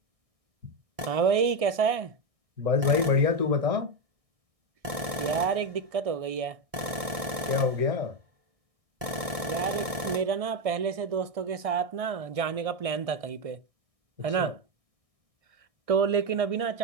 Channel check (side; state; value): left; late; 1.6 ms